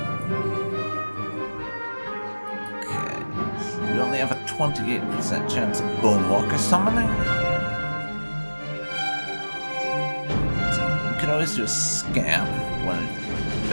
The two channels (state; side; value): inverted; both; correlation -1.00